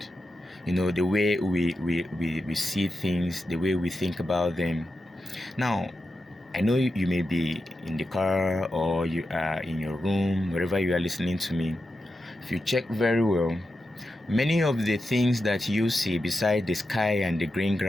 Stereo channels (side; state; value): both; normal; correlation 0.89